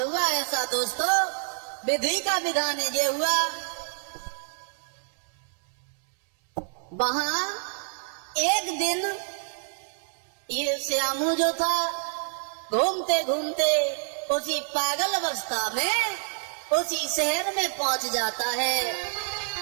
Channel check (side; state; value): left; silent; 60 dB below the other